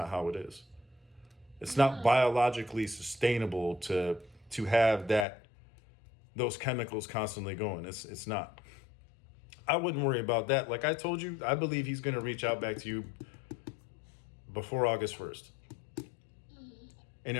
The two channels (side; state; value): right; drops out; at 5.2 s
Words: how it is. It's not biologically sustainable to have those chemicals constantly going. It's not. I wouldn't worry about that. Like I told you, I believe he's going to reach out back to you before August 1st. And